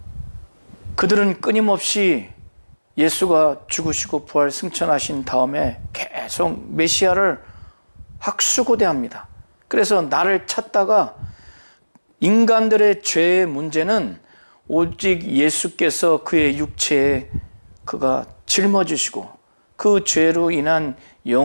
그들은 끊임없이 예수가 죽으시고 부활 승천하신 다음에 계속 메시아를 학수고대합니다. 그래서 나를 찾다가, 인간들의 죄의 문제는 오직 예수께서 그의 육체에 그가 짊어지시고 그 죄로 인한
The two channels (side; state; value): both; inverted; correlation -1.00